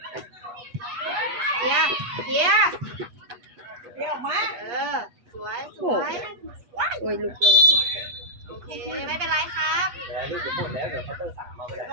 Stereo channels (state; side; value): late; left; 8.1 ms